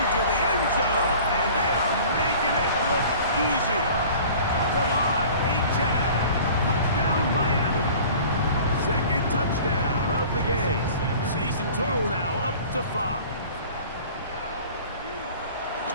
the end zone. And they are making it look easy. Come on, Achan. Touchdown, Miami. 2nd touchdown of the game. Season total now up to 5.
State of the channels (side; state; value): both; inverted; correlation -0.45